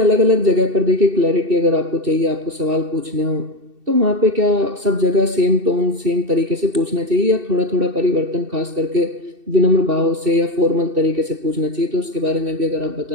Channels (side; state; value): left; late; 2.7 ms